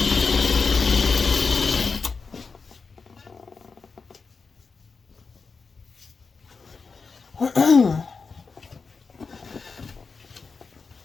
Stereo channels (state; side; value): quieter; right; 4.8 dB